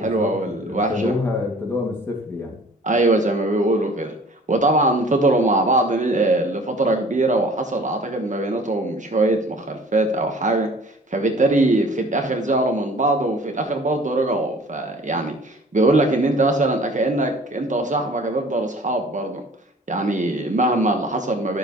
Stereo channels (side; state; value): both; normal; correlation 0.50